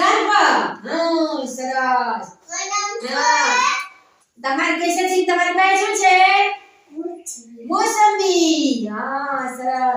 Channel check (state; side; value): identical; both; correlation 1.00